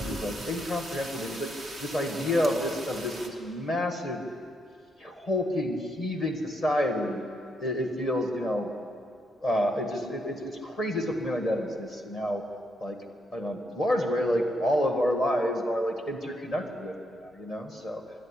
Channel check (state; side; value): normal; both; correlation 0.77